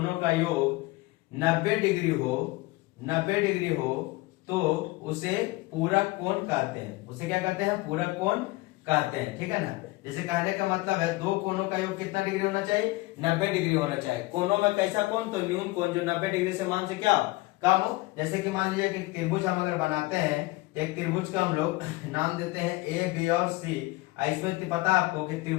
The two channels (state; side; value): quieter; right; 21.3 dB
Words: का योग 90 डिग्री हो, 90 डिग्री हो तो उसे पूरक कोण कहते हैं। उसे क्या कहते हैं? पूरक कोण कहते हैं, ठीक है ना। जैसे कहने का मतलब है दो कोणों का योग कितना डिग्री होना चाहिए? 90 डिग्री होना चाहिए। कोणों में कैसा कोण? तो न्यून कोण जो 90 डिग्री से मान से क्या कम हो। जैसे कि मान लीजिए कि त्रिभुज हम अगर बनाते हैं तो एक त्रिभुज का हम लोग नाम देते हैं ए, बी और सी। इसमें पता आपको कि